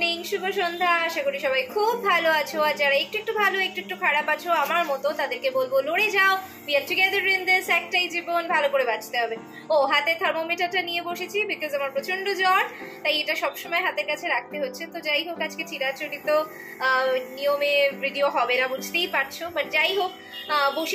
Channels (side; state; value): both; identical; correlation 1.00